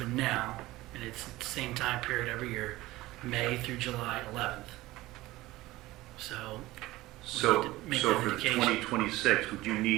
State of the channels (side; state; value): left; quieter; 18.2 dB